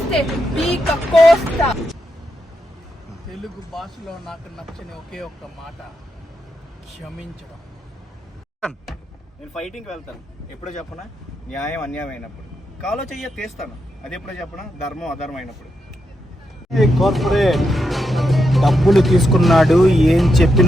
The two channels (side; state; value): both; normal; correlation 0.84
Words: పీక కోస్తా. తెలుగు భాషలో నాకు నచ్చని ఒకే ఒక్క మాట క్షమించడం. నేను ఫైటింగ్కి వెళ్తాను ఎప్పుడో చెప్పనా, న్యాయం అన్యాయం అయినప్పుడు. కాలో చెయ్య తీస్తాను, అది ఎప్పుడో చెప్పనా, ధర్మం అధర్మం అయినప్పుడు. కార్పొరేట్ డబ్బులు తీసుకున్నాడు, ఏం